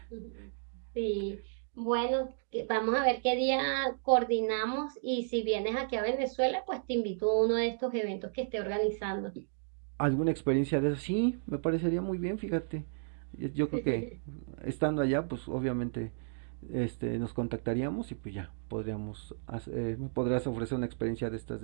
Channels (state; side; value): silent; left; digital silence